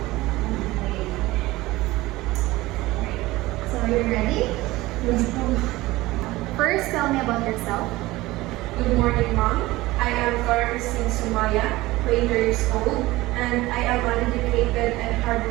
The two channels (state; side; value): quieter; left; 18.9 dB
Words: So you're ready? Yes, First, tell me about yourself. Good morning, Mom. I am Christine Sumaya, 20 years old, and I am an educated and